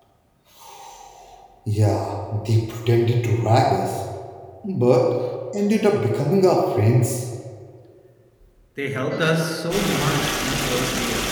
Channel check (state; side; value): identical; both; correlation 1.00